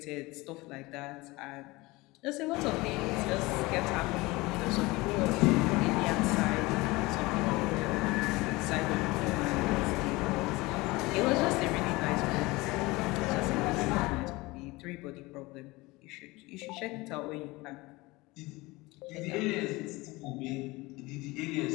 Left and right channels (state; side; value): quieter; right; 22.0 dB